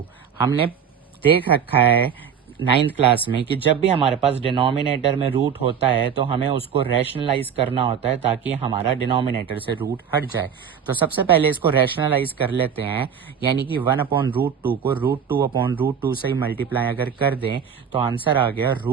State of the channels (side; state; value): left; quieter; 7.6 dB